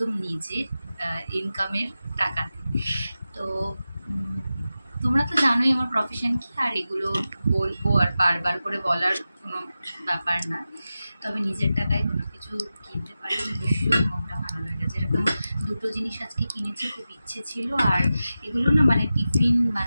নিজের ইনকামের টাকাতে। তো তোমরা তো জানোই আমার প্রফেশন কি, আর এগুলো বলবো আর বারবার করে বলার কোনো ব্যাপার না। তবে নিজের টাকায় কোনো কিছু কিনতে পারলে ভীষণ মনটা ভালো লাগে। যেরকম দুটো জিনিস আজকে কিনেছি, খুব ইচ্ছে ছিল। আর এগুলো না মানে টিফিন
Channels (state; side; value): inverted; both; correlation -0.93